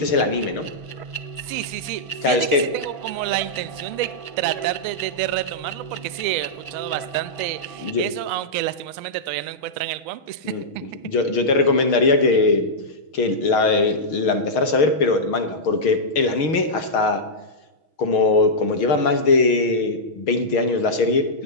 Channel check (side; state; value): right; late; 6.4 ms